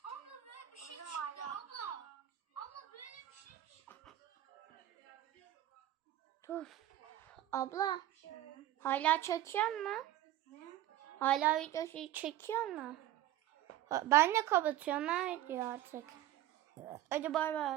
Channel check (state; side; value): quieter; left; 13.6 dB